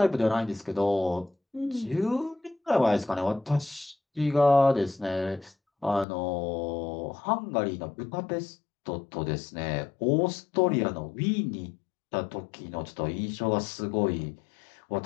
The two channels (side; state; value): right; drops out; at 6.1 s